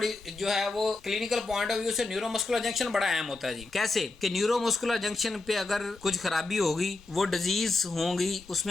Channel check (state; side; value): quieter; right; 3.3 dB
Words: जो है वो क्लिनिकल पॉइंट ऑफ व्यू से न्यूरोमस्कुलर जंक्शन बड़ा अहम होता है जी। कैसे कि न्यूरोमस्कुलर जंक्शन पे अगर कुछ खराबी होगी, वो डिजीज होंगी,